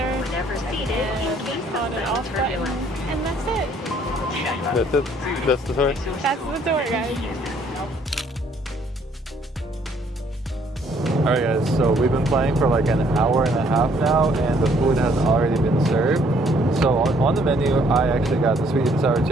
on and off button. And that's it. That's it? That's the tour? That's the tour, guys. Alright guys, so we've been playing for like an hour and a half now and the food has already been served. So on the menu, I actually got the sweet and sour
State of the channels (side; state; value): both; normal; correlation 0.64